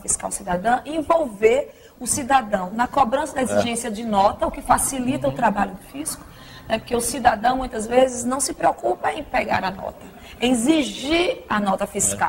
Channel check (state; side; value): identical; both; correlation 1.00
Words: cidadã, envolver o cidadão na cobrança da exigência de nota, o que facilita o trabalho do fisco, né? Porque o cidadão, muitas vezes, não se preocupa em pegar a nota, em exigir a nota